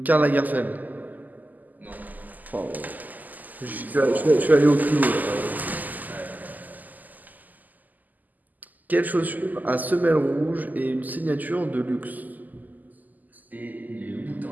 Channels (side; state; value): left; late; 0.082 ms